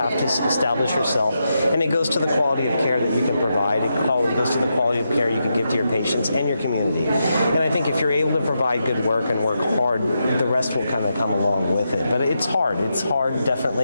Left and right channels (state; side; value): inverted; both; correlation -0.85